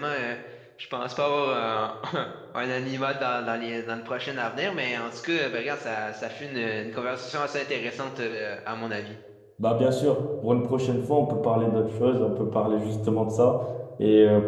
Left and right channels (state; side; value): identical; both; correlation 1.00